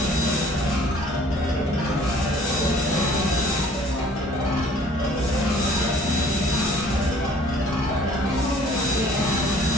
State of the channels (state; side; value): normal; both; correlation 0.53